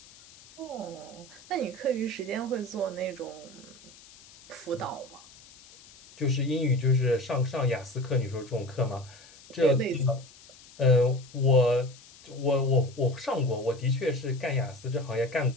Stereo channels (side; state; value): left; noise; hiss, 22 dB below the sound